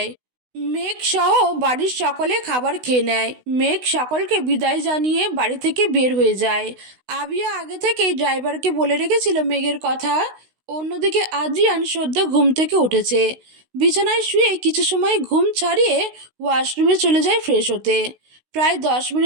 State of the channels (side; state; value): left; late; 16 ms